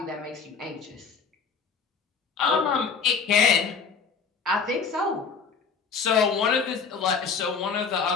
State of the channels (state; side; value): quieter; right; 5.5 dB